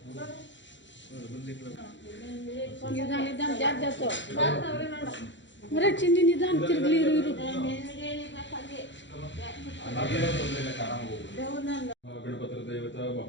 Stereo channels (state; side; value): late; right; 0.54 ms